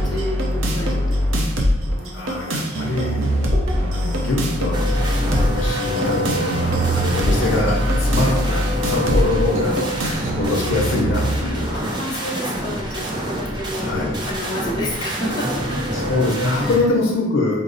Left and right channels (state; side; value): normal; both; correlation 0.58